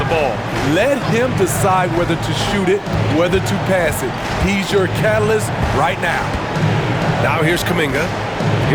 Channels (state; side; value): identical; both; correlation 1.00